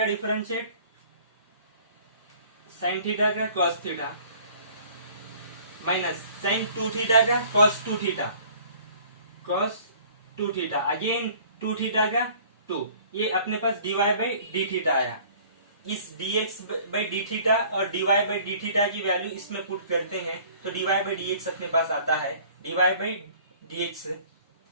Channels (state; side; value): inverted; both; correlation -0.52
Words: डिफरेंशिएट साइन थीटा का cos theta minus sine 2 theta का cos 2 theta, cos 2 theta again 2 theta का 2, ये अपने पास dy बाई डी थीटा आया। इस dx बाई डी थीटा और dy बाई डी थीटा की वैल्यू इसमें पुट करते हैं तो dy बाई dx अपने पास आता है, dy by dx,